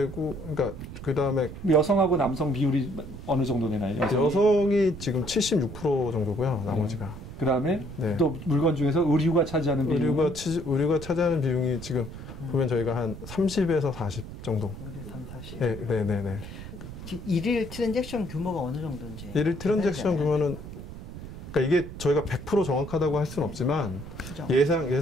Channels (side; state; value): right; noise; rumble, 12 dB below the sound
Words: 그러니까 그 다음에 여성하고 남성 비율이 어느 정도 되나요? 여성이 지금 76% 정도고요. 나머지가. 그 다음에 또 물건 중에서 의류가 차지하는 비율. 의류가 차지하는 비용이 지금 보면 저희가 한 30에서 40 정도. 3, 40. 네네네. 지금 일일 트랜잭션 규모가 어느 정도인지. 일일 트랜잭션 규모는 그러니까 이게 저희가 100% 정확하다고 할 수는 없지만